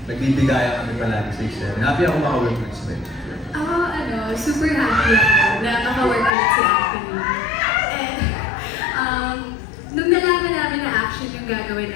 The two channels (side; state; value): right; drops out; at 6.3 s